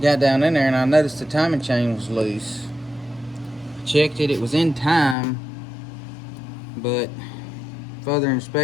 Got down in there and I noticed the timing chain was loose. Checked it, it was in time, but further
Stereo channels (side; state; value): right; drops out; at 5.2 s